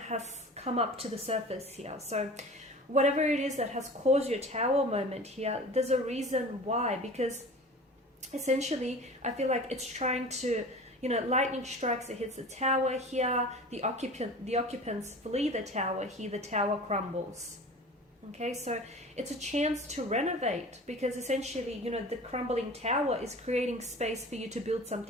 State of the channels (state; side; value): normal; both; correlation 0.39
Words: has come up to the surface here. So whatever it is that has caused your Tower moment here, there's a reason why, because essentially I feel like it's trying to, lightning strikes, it hits the Tower here, the occupants flee the Tower here, the Tower crumbles. Okay, so it's a chance to renovate, because essentially, the crumbling Tower is creating space for you to build